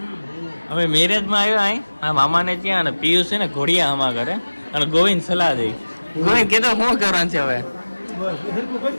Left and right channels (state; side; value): inverted; both; correlation -1.00